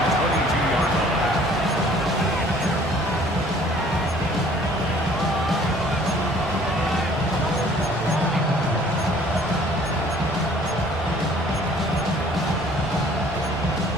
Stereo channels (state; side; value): noise; right; hum, 18 dB below the sound